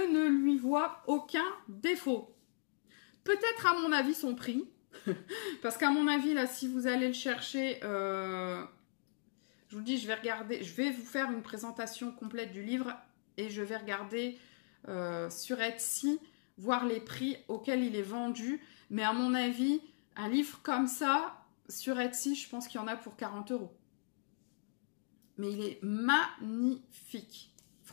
lui vois aucun défaut. Peut-être à mon avis son prix. Parce qu'à mon avis, là, si vous allez le chercher, je vous le dis, je vais regarder, je vais vous faire une présentation complète du livre et je vais regarder sur Etsy, voir les prix auxquels il est vendu. Mais à mon avis, un livre comme ça, sur Etsy, je pense qu'il y en a pour 40 €. Mais il est magnifique.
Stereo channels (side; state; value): right; silent; digital silence